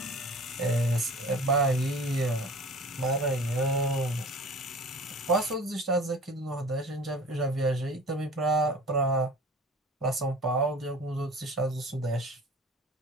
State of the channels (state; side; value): normal; both; correlation 0.42